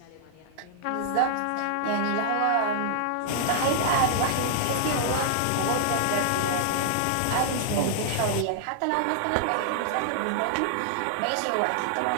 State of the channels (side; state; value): both; different; correlation -0.01